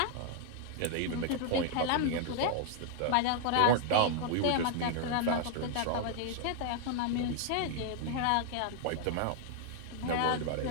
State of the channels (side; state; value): both; different; correlation 0.00